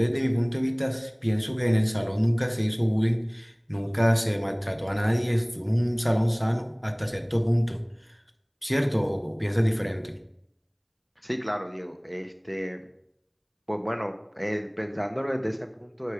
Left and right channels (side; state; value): both; identical; correlation 1.00